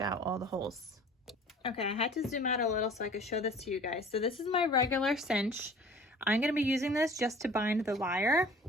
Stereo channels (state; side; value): normal; both; correlation 0.47